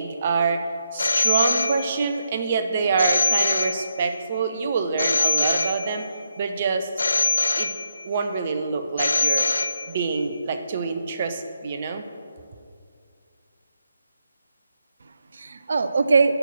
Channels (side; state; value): both; inverted; correlation -0.83